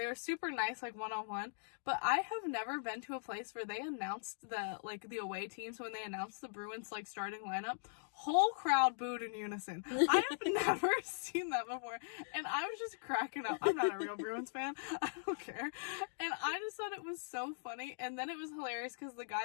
were super nice, like one-on-one, but I have never been to a place where they announced the away teams. When they announced the Bruins like starting lineup, whole crowd booed in unison. I have never seen that before, and I was just cracking up. I'm not a real Bruins fan, I don't care, and I just thought it was so funny. And then it was hilarious because the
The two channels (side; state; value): right; silent; digital silence